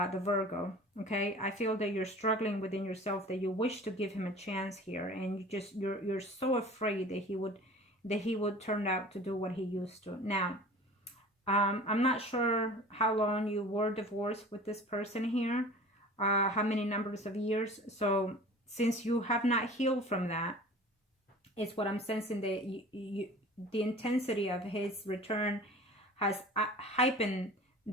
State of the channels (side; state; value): both; normal; correlation 0.42